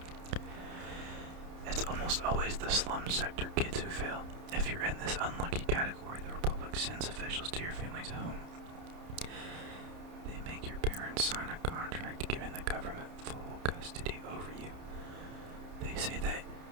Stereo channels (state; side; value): late; left; 30 ms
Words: It's It's almost always the slum sector kids who fail. If you're in this unlucky category, the Republic sends officials to your family's home. They make your parents sign a contract giving the government full custody over you. They say that